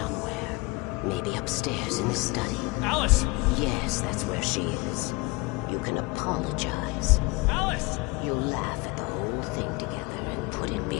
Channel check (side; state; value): right; quieter; 25.2 dB